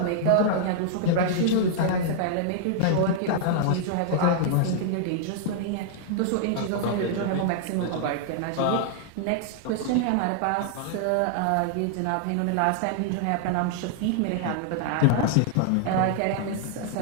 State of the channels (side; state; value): both; different; correlation -0.01